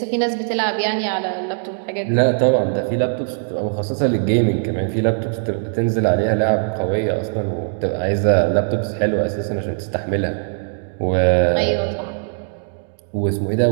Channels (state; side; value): silent; left; 66 dB below the other